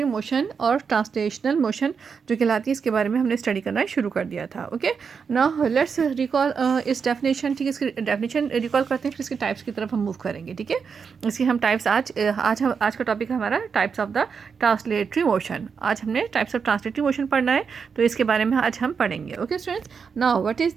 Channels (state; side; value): quieter; left; 6.0 dB